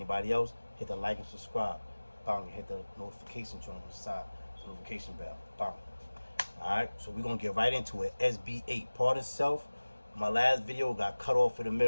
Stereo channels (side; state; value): both; inverted; correlation -1.00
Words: else, hit the like and subscribe. Bang, hit the notification joint on the side, the notification bell. Bang. Alright, so we're gonna get right into it. SB8, pardon self. My last video got cut off in the